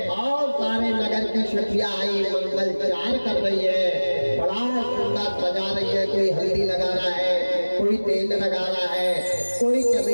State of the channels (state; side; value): inverted; both; correlation -1.00